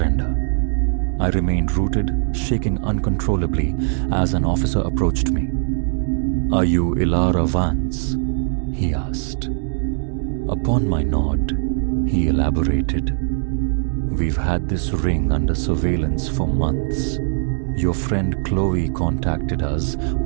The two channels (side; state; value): left; silent; 61 dB below the other